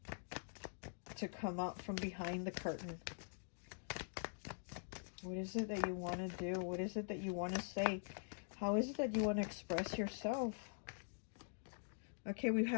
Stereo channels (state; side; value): silent; right; digital silence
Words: To come out from behind the curtain. What is it that you want to do? What is it that you want to say? How is it that you want to express yourself? Okay, we